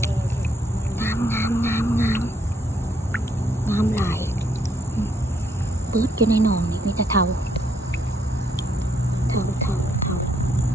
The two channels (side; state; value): both; normal; correlation 0.72